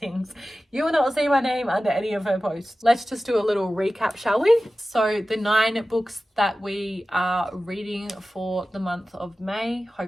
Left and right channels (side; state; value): both; normal; correlation 0.95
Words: You will not see my name under any of her posts. Let's just do a little recap, shall we? So the 9 books that we are reading for the month of May,